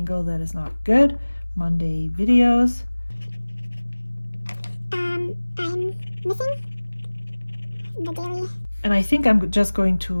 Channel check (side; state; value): both; inverted; correlation -1.00